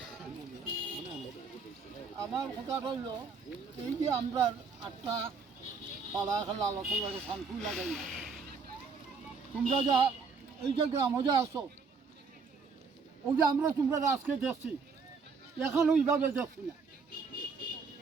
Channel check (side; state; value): left; quieter; 5.0 dB